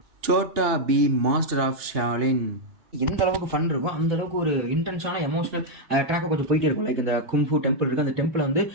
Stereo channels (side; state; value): left; late; 3.4 ms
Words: Chhota Bheem master of Shaolin. எந்த அளவுக்கு ஃபன் இருக்கும் அந்த அளவுக்கு ஒரு இன்டென்ஸான எமோஷனல் ட்ராக்காக கொஞ்சம் போயிட்டே இருக்கும். லைக் இந்த கும்ஃபு டெம்பிள் இருக்குது, அந்த டெம்பிளை வந்து